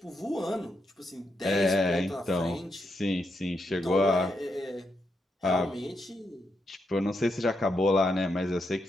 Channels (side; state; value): both; normal; correlation 0.82